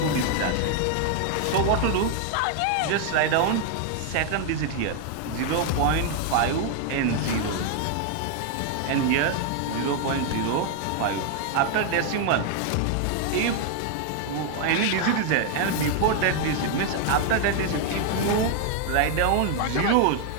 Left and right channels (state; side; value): different; both; correlation 0.00